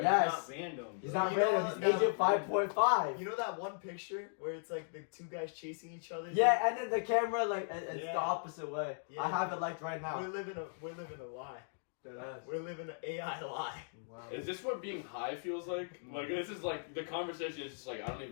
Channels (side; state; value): right; silent; digital silence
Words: It's Yes. not random. He's bro. not You know random. what? He's No. Agent 5.5. You know that one picture where it's like the two guys chasing each other? Yeah, and then the camera it's Yeah. the opposite way. Yeah. I have it liked right We're now. living a lie. Deadass. We're living an AI lie. Wow. Is this what being high feels like? Like, this is like, the conversation is just like, I don't